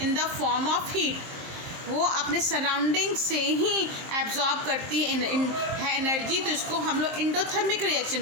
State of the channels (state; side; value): late; left; 23 ms